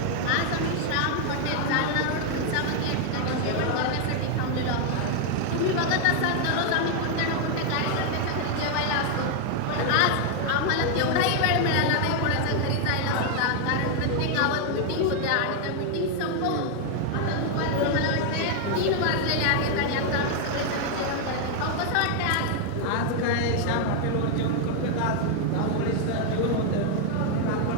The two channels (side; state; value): both; different; correlation 0.00